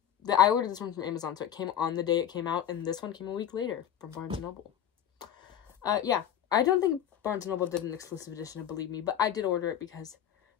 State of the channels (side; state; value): right; quieter; 10.1 dB